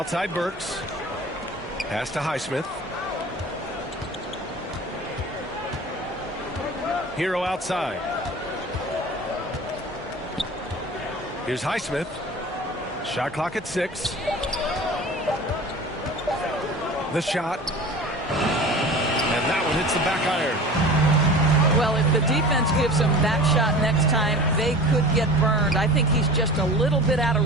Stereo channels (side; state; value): both; normal; correlation 0.38